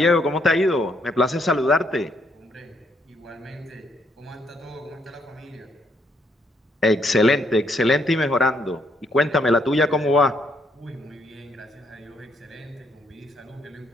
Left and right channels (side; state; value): both; normal; correlation 0.72